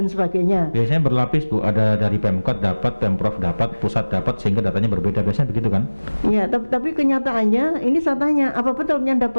sebagainya. Biasanya berlapis, Bu, ada dari Pemkot dapat, Pemprov dapat, pusat dapat, sehingga datanya berbeda. Biasanya begitu kan? Iya, tapi kenyataannya ini saya tanya, apa betul yang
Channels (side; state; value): both; inverted; correlation -1.00